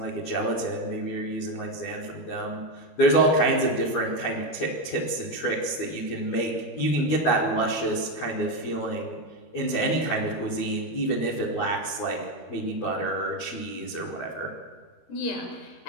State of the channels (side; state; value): right; late; 13 ms